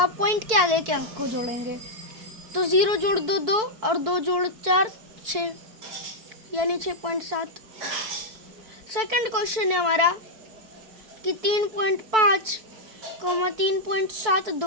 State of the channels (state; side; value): late; left; 4.5 ms